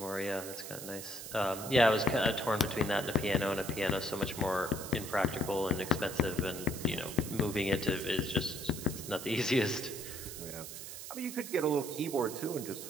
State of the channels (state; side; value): noise; right; hiss, 10 dB below the sound